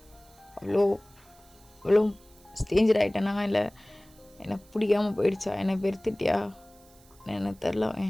அவ்வளோ ஸ்டேஞ்சர் ஆகிட்டேனா, இல்லை என்னை பிடிக்காமல் போயிடுச்சா, என்னை வெறுத்துட்டியா எனக்கு தெரில.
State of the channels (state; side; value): noise; right; hiss, 27 dB below the sound